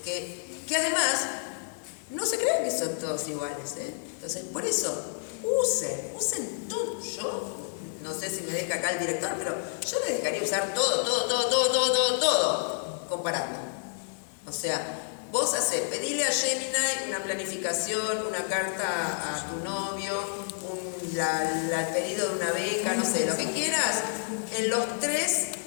que además no se creen que son todos iguales, ¿eh? Entonces, por eso, usen todo. Yo no sé si me deja acá el director, pero yo les dejaría usar todo, comparando. O sea, vos pedile a Gemini una planificación, una carta a tu novio, el pedido de una beca, no sé, lo que quieras, en los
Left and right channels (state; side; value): silent; right; 56 dB below the other